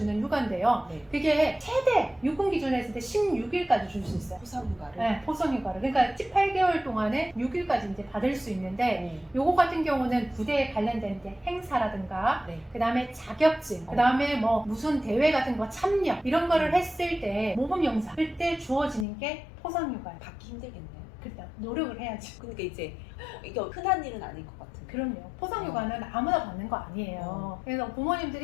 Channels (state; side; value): drops out; right; at 19.1 s